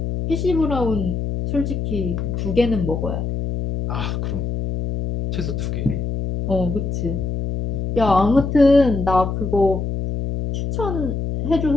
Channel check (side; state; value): left; noise; hum, 3 dB below the sound